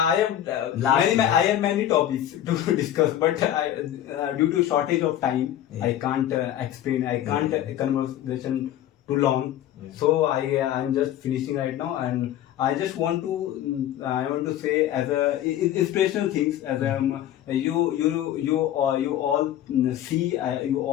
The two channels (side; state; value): right; quieter; 11.8 dB